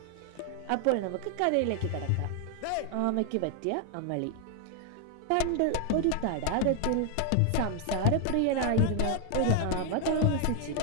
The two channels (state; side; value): different; both; correlation 0.00